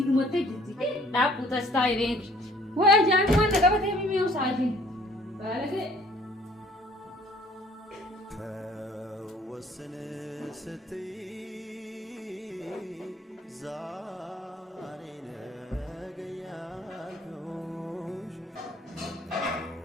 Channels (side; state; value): both; normal; correlation 0.57